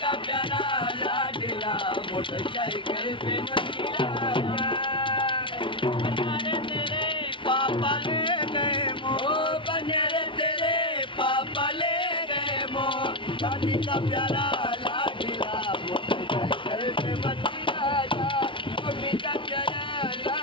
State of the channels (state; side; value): late; right; 0.25 ms